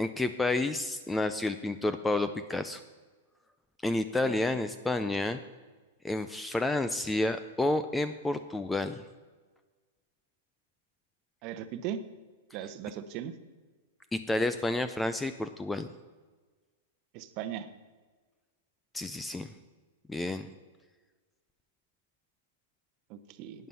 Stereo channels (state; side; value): normal; both; correlation 0.79